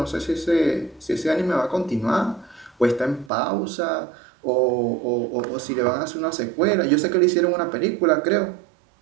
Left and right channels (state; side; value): drops out; left; at 3.3 s